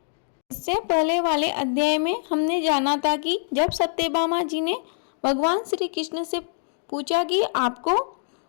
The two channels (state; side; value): silent; right; digital silence